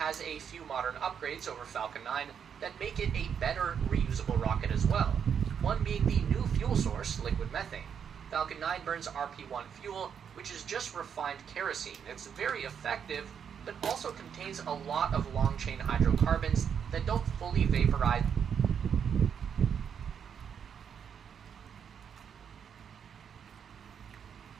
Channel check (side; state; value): left; quieter; 7.6 dB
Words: a few modern upgrades over Falcon 9 that make it a better reusable rocket as well, one being the new fuel source, liquid methane. Falcon 9 burns RP-1 fuel, which is just refined kerosene. It's very effective, but also contains a lot of long-chain hydrocarbons that don't fully vaporize